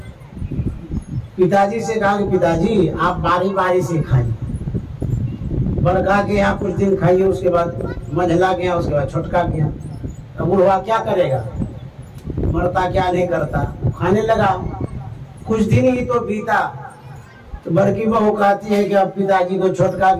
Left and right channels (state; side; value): identical; both; correlation 1.00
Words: पिताजी से कहा कि पिताजी आप बारी बारी से खाइए, बड़का के यहाँ कुछ दिन खाइए, उसके बाद मंझला गया, उसके बाद छोटका गया। अब बूढ़ा क्या करेगा, मरता क्या नहीं करता, खाने लगा। कुछ दिन ही तो बीता तो बड़की बहू कहती है कि अब पिताजी को छोटका